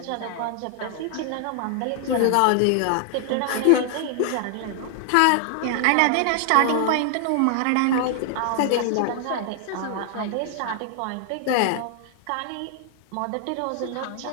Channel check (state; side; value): different; both; correlation 0.00